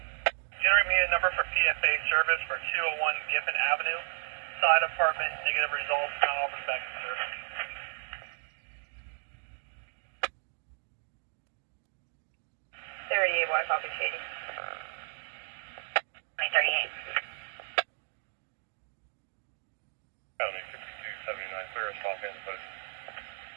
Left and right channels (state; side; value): silent; left; 56 dB below the other